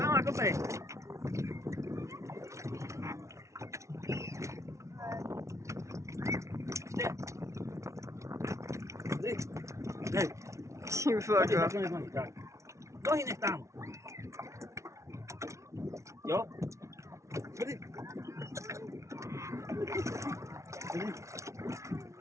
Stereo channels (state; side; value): late; left; 0.14 ms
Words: kopej. Dej. Ty Chodźcie, voko. tak, nohy, tak. Nohy nech tam. Jo? Chodź.